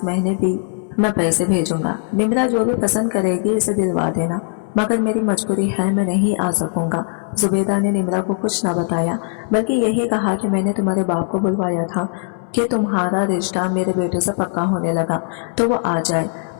महीने भी मैं पैसे भेजूंगा। निम्रा जो भी पसंद करेगी इसे दिलवा देना, मगर मेरी मजबूरी है मैं नहीं आ सकूंगा। जुबेदा ने निम्रा को कुछ न बताया बल्कि यही कहा कि मैंने तुम्हारे बाप को बुलवाया था कि तुम्हारा रिश्ता मेरे बेटे से पक्का होने लगा तो वो आ जाए,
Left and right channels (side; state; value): right; silent; 63 dB below the other